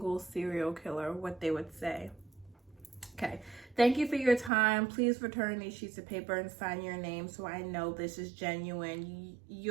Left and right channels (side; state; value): left; drops out; at 4.5 s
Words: serial killer what they would say. Okay, thank you for your time. Please return these sheets of paper and sign your name so I know this is genuine.